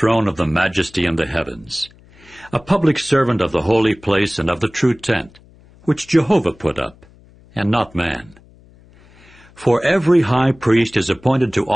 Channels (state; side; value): noise; left; hum, 27 dB below the sound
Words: of the majesty in the heavens, a public servant of the holy place and of the true tent, which Jehovah put up, and not man. For every high priest is appointed to